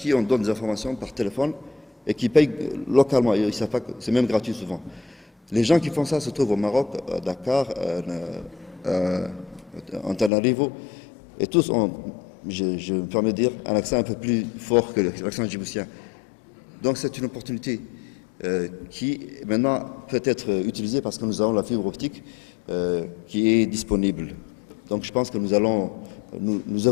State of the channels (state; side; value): drops out; right; at 10.3 s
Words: on donne des informations par téléphone, et qui payent localement. Ils savent pas que c'est même gratuit souvent. Les gens qui font ça se trouvent au Maroc, à Dakar, en Tanarivo, et tous ont, je me permets de dire, un accent un peu plus fort que l'accent djiboutien. Donc c'est une opportunité qui maintenant peut être utilisée parce que nous avons la fibre optique qui est disponible. Donc je pense que nous